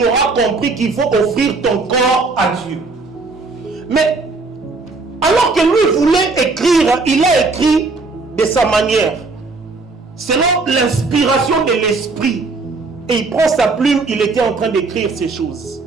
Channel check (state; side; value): quieter; left; 3.8 dB